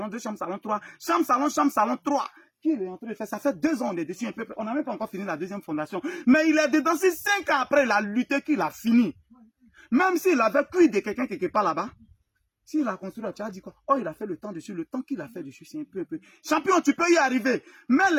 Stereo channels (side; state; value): both; identical; correlation 1.00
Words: 2 chambres, salon, 3. Chambre, salon, 3. Qu'il est en train de faire, ça fait 2 ans, on est dessus un peu. On n'a même pas encore fini la deuxième fondation. Mais il est dedans, c'est 5 ans après, il a lutté qu'il a fini. Même s'il avait cuit de quelqu'un quelque part là-bas, s'il a construit, tu as dit quoi? Oh, il a fait le temps dessus. Le temps qu'il a fait dessus, c'est un peu. Champion, tu peux y arriver. Mets